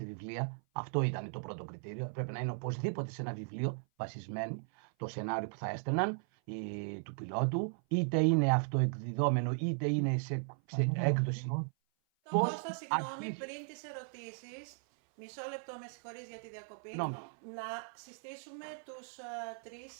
βιβλία. Αυτό ήταν το πρώτο κριτήριο. Πρέπει να είναι οπωσδήποτε σε ένα βιβλίο βασισμένο το σενάριο που θα έστελναν του πιλότου, είτε είναι αυτοεκδιδόμενο, είτε είναι σε έκδοση. Κώστα, συγγνώμη, πριν τις ερωτήσεις, μισό λεπτό, με συγχωρείς για τη διακοπή, να συστήσουμε τους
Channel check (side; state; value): left; silent; 53 dB below the other